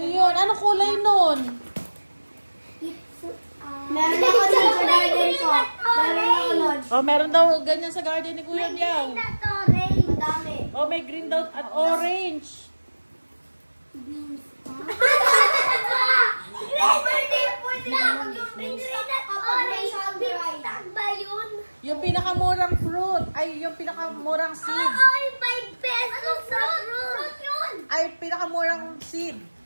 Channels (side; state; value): both; inverted; correlation -1.00